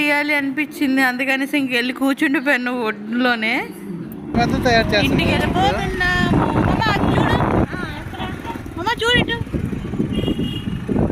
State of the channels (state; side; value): identical; both; correlation 1.00